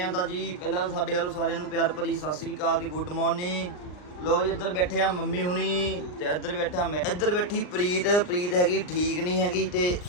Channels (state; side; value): late; right; 39 ms